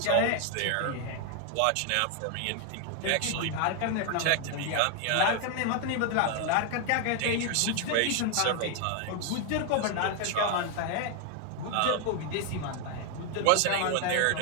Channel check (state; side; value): different; both; correlation 0.01